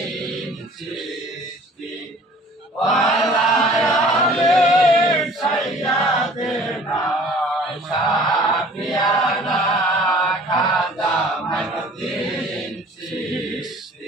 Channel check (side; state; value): both; normal; correlation 0.49